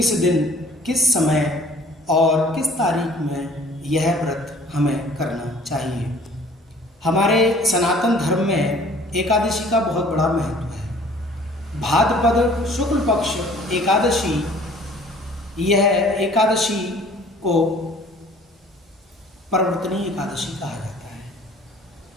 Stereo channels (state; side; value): normal; both; correlation 0.52